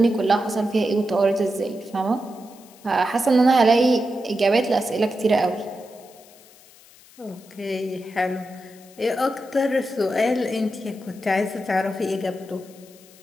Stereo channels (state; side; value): noise; left; hiss, 25 dB below the sound